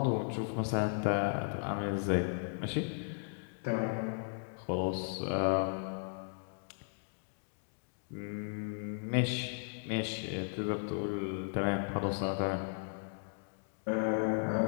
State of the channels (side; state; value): right; silent; digital silence